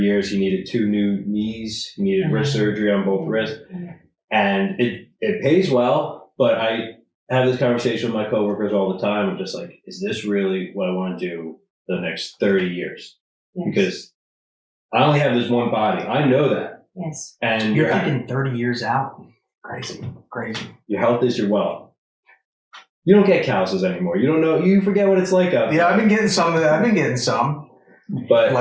He needed 2 new knees. He needed wrist surgery on both wrists. And it pays well, but I have this conversation with my coworkers all the time. I'm just like, is this really what I want to do the next 30 years? Yes. Because I only have this one body. I know that. Yes. And You're thinking 30 years out. Crazy. Your health is your wealth. You don't get calluses anymore. You don't know. You forget what it's like out there. Yeah, I've been getting some of that. I've been getting some. But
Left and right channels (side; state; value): both; identical; correlation 1.00